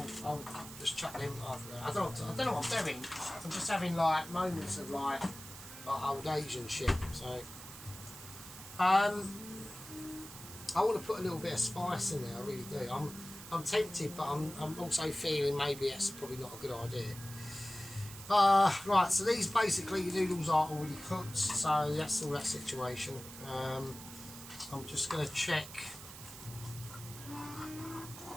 just chuck them after that. I don't know what I'm doing. I'm just having like moments of like old Asian shit. So I want to put a little bit of spice in there. I really do. I'm tempted, but I'm also feeling maybe that's probably not a good idea. Right. So these basically the noodles are already cooked. So that's all that situation. I'm just going to check.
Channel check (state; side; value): noise; right; hiss, 14 dB below the sound